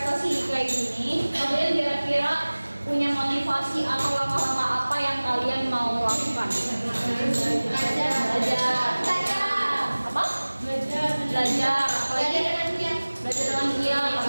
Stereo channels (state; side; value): inverted; both; correlation -1.00